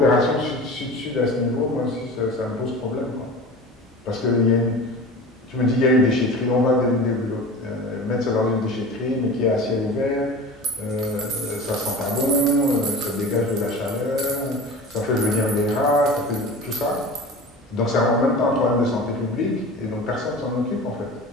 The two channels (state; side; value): normal; both; correlation 0.36